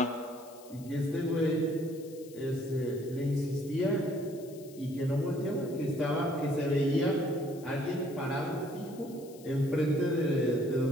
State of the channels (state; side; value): noise; left; hiss, 22 dB below the sound